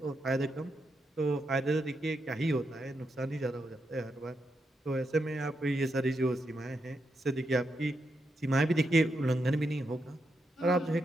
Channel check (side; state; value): both; normal; correlation 0.83